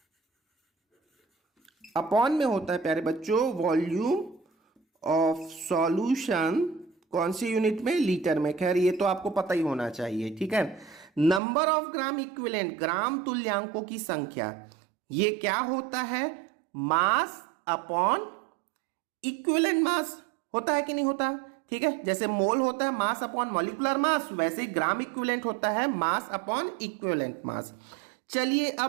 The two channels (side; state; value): left; drops out; at 11.4 s